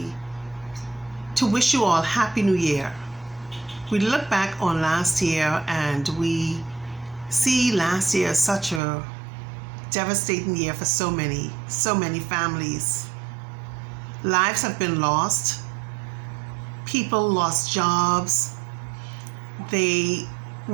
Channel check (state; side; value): drops out; left; at 8.8 s